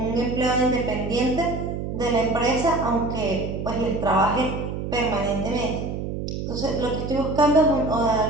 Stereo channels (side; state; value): right; noise; hum, 5 dB below the sound